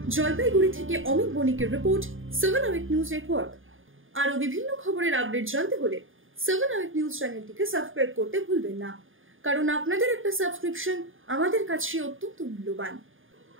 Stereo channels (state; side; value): late; left; 0.58 ms